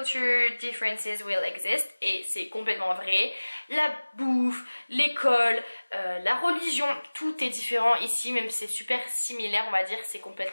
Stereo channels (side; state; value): both; inverted; correlation -1.00